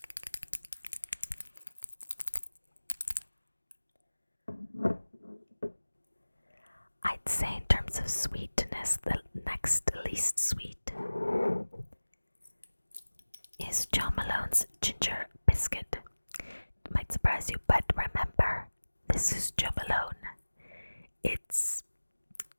I'd say in terms of sweetness, the next least sweet is John Malone's Ginger Biscuit. It might surprise you, but remember, this is John Malone. It's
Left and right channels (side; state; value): both; inverted; correlation -1.00